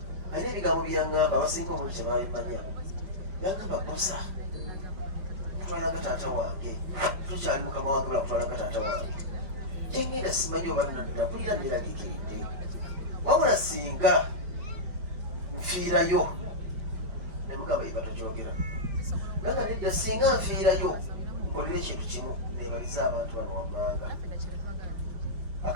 alina ebigambo byaŋŋamba abasinga obuli kyebabimanya. Yagamba Bosa kutwalanga taata wange tukyali mukama wange bula kutwalanga taata wange gyengenda simanyi oba nakulira neeragikiridde wabula singa nfiirayo ne mugamba iba tokyogera naga nedda singa nfiirayo nkolera ekintu kimu nebaliza abantu bano wammanga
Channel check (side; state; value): left; late; 5.7 ms